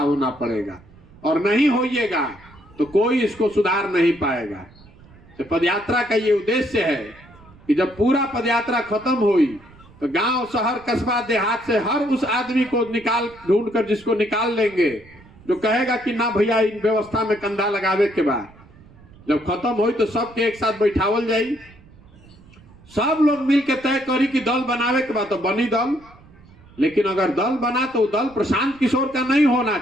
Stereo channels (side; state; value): right; noise; rumble, 24 dB below the sound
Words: पड़ेगा। और नहीं होइएगा तो कोई इसको सुधार नहीं पाएगा। तो पदयात्रा का ये उद्देश्य है कि जब पूरा पदयात्रा खत्म हुई तो गांव, शहर, कस्बा, देहात से हर उस आदमी को ढूंढ कर जिसको निकाल लेंगे जो कहेगा कि ना भैया इन व्यवस्था में कंधा लगावे के बाद। जब खत्म हुई तो सबके एक साथ बैठावल जाई, सब लोग मिलकर तय करी कि दल बनावे के बाद तो बनी दल, लेकिन अगर दल बना तो दल प्रशांत किशोर का नहीं होना